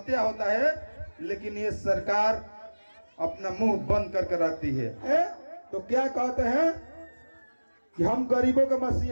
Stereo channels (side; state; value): both; inverted; correlation -1.00